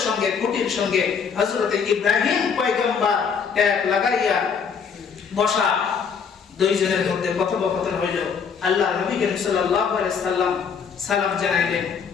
সঙ্গে খুঁটির সঙ্গে হযরতে ইব্রাহিম পয়গম্বর এক লাগাইয়া বসা। দুইজনের মধ্যে কথোপকথন হইল। আল্লাহ নবী করিম সাল্লাল্লাহু আলাইহি সাল্লাম সালাম জানাইলেন।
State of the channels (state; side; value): quieter; right; 6.4 dB